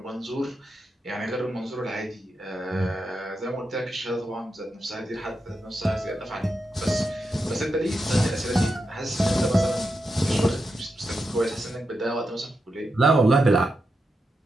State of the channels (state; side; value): normal; both; correlation 0.87